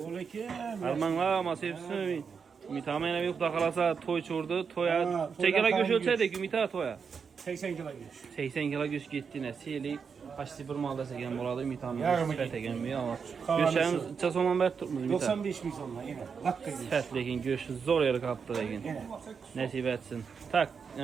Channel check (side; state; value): left; quieter; 6.0 dB